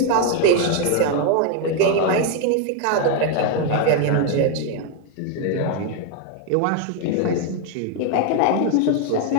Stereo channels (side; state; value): both; different; correlation 0.01